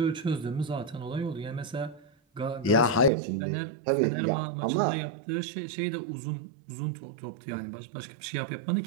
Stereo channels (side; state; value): left; drops out; at 3.1 s